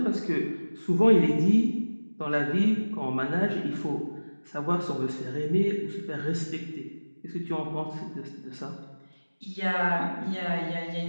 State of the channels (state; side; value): inverted; both; correlation -1.00